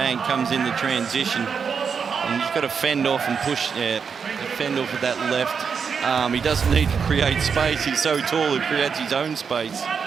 comes in the transition. And he's got to fend off and push, fend off with that left arm. He doesn't need to create space. He's so tall, he creates his own space.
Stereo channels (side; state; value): left; quieter; 6.2 dB